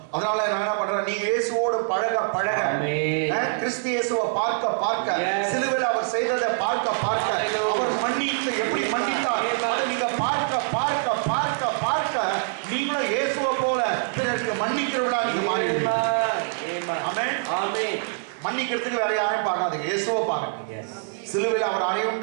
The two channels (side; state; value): left; silent; 61 dB below the other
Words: அதனால நான் என்ன பண்றேன், நீங்க இயேசுவோடு பழக கிறிஸ்து இயேசுவை பார்க்க சிலுவையில் அவர் செய்ததை பார்க்க அவர் மன்னித்து எப்படி மன்னித்தார் அதை நீங்க பார்க்க நீங்களும் இயேசுவை போல பிறருக்கு மன்னிக்கிறவளா நீங்க மாறிடுவீங்க. ஆமென். மன்னிக்கிறதுக்கு வேற யாரையும் பார்க்காதீங்க, இயேசுவை பாருங்க. சிலுவையில் அவர்